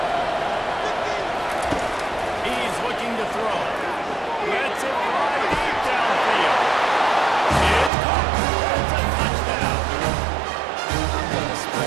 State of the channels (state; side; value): drops out; left; at 7.9 s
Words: He's looking to throw. Lets it fly deep downfield. It's caught. It's a touchdown. I'm going to